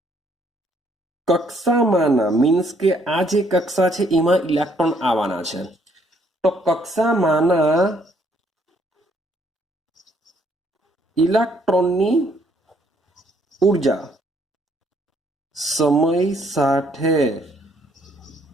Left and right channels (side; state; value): both; normal; correlation 0.67